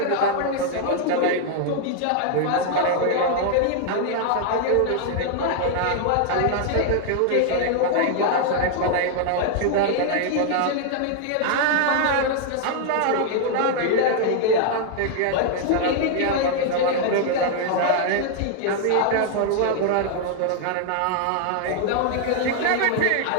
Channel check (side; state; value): both; different; correlation 0.00